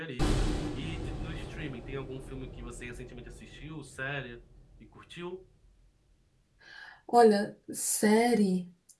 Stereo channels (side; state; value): both; identical; correlation 1.00